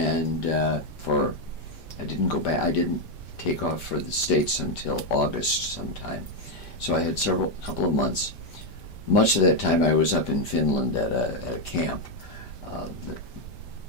I didn't go back. I didn't take off for the States until August sometime. So I had a couple of months. Much of that time I was up in Finland at a camp.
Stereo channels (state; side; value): late; right; 5.1 ms